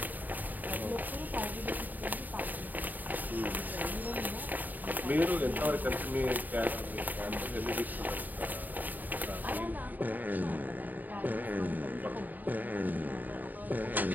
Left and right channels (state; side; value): late; left; 0.085 ms